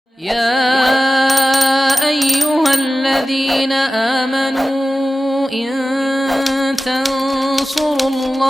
يا أيها الذين آمنوا إن تنصروا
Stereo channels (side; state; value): both; normal; correlation 0.94